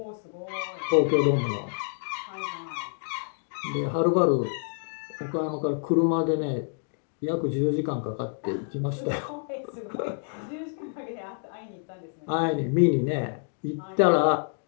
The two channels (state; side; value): silent; right; 59 dB below the other